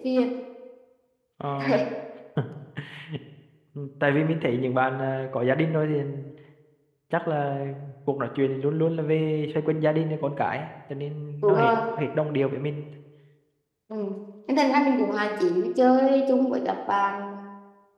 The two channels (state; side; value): identical; both; correlation 1.00